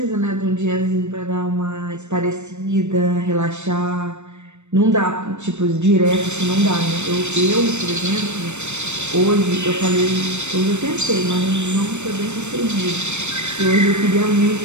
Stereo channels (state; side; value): late; left; 0.82 ms